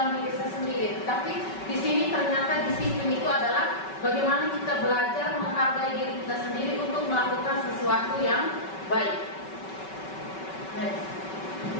diri saya sendiri. Tapi di sini ternyata disiplin itu adalah bagaimana kita belajar menghargai diri kita sendiri untuk melakukan sesuatu yang baik. Next.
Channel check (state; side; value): late; right; 5.3 ms